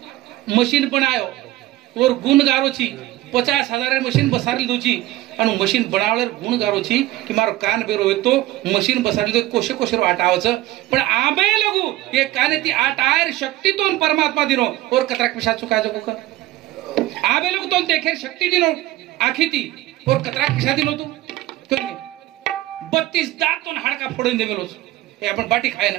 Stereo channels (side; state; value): left; quieter; 16.4 dB